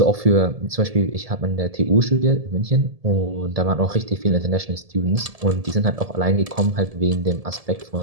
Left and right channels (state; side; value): late; left; 1.7 ms